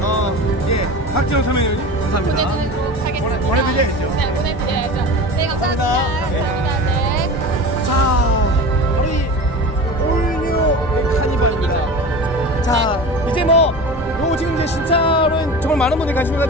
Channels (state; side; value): normal; both; correlation 0.33